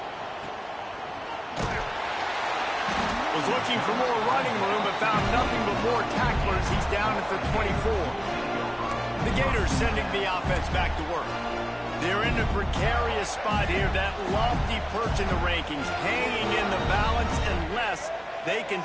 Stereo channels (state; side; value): identical; both; correlation 1.00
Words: Was looking for more running room, but found nothing but more tacklers. He's down at the 24. The Gators sending the offense back to work. They're in a precarious spot here, that lofty perch in the rankings, hanging in the balance unless they can